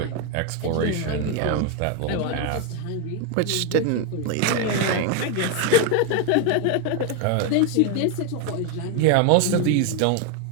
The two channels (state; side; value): different; both; correlation 0.01